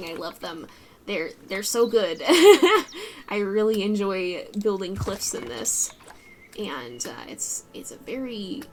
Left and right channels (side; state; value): both; identical; correlation 1.00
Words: I love them. They're so good. I really enjoy building cliffs in this. And it's a very,